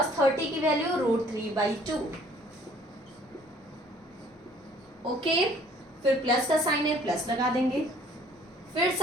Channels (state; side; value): normal; both; correlation 0.56